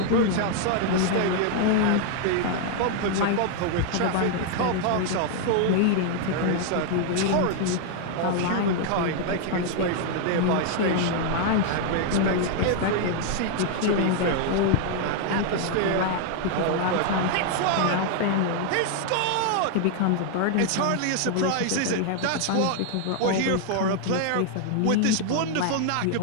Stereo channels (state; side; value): different; both; correlation 0.00